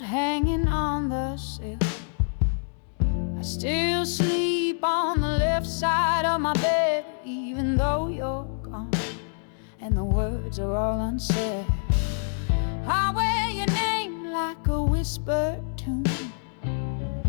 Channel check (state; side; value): silent; right; digital silence